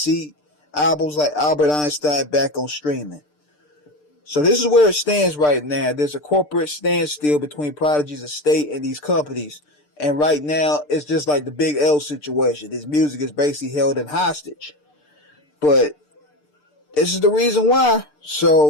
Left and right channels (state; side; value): late; right; 6.7 ms